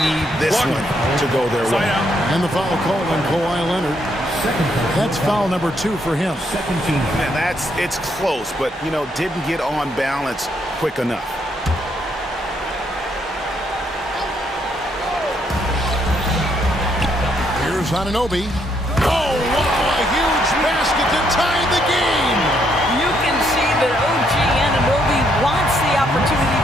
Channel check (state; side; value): normal; both; correlation 0.74